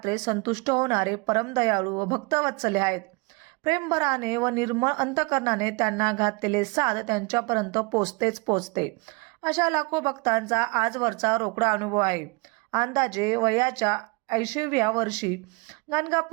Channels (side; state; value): left; quieter; 28.2 dB